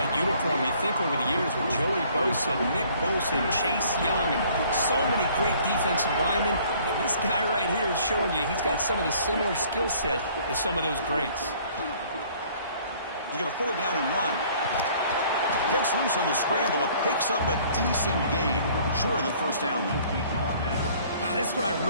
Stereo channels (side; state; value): both; inverted; correlation -0.57